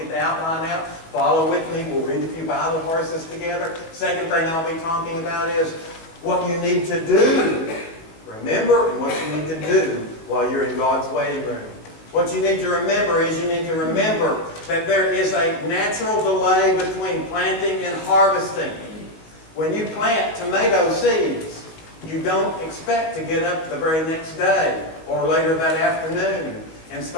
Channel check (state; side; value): late; right; 18 ms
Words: get the outline out. Follow with me. We'll read a few Bible verses together. Second thing I'll be talking about is what you need to do. Remember, and what you need to do while you're in God's waiting room. What you need to remember is you need to remember that there is a natural delay between planting and harvesting. When you plant tomato seeds, you don't expect to get up the very next day or later that afternoon and